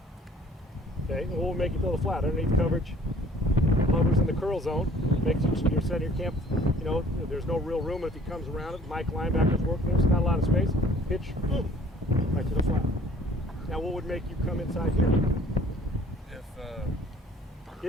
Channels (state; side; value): normal; both; correlation 0.55